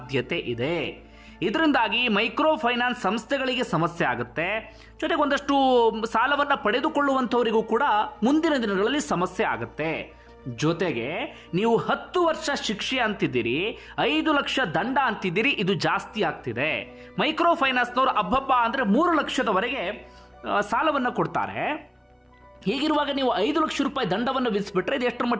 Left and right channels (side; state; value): both; identical; correlation 1.00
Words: ಇದೆ. ಇದರಿಂದಾಗಿ ಮೈಕ್ರೋ ಫೈನಾನ್ಸ್ ಸಂಸ್ಥೆಗಳಿಗೆ ಸಮಸ್ಯೆ ಆಗುತ್ತೆ. ಜೊತೆಗೆ ಒಂದಷ್ಟು ಸಾಲವನ್ನ ಪಡೆದುಕೊಳ್ಳುವಂಥವರಿಗೂ ಕೂಡ ಮುಂದಿನ ದಿನಗಳಲ್ಲಿ ಸಮಸ್ಯೆ ಆಗುತ್ತೆ. ಜೊತೆಗೆ ನೀವು 10 ವರ್ಷ ಶಿಕ್ಷೆ ಅಂತಿದ್ದೀರಿ, 5 ಲಕ್ಷ ದಂಡ ಅಂತಿದ್ದೀರಿ. ಇದು ಜಾಸ್ತಿ ಆಗ್ತಿದೆ. ಮೈಕ್ರೋ ಫೈನಾನ್ಸ್ನವರು ಅಬ್ಬಬ್ಬ ಅಂದ್ರೆ 3 ಲಕ್ಷದವರೆಗೆ ಸಾಲವನ್ನ ಕೊಡ್ತಾರೆ. ಹೀಗಿರುವಾಗ ನೀವು 5 ಲಕ್ಷ ರೂಪಾಯಿ ದಂಡವನ್ನು ವಿಧಿಸಿಬಿಟ್ರೆ ಇದು ಎಷ್ಟರ